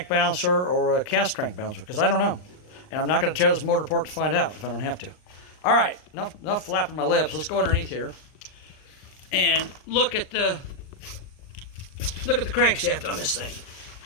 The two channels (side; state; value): right; late; 39 ms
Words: balancer or a cast crank balancer, because I don't know. And I'm not going to tear this motor apart to find out if I don't have to. All right, enough flapping my lips. Let's go underneath here and look at the crankshaft on this thing,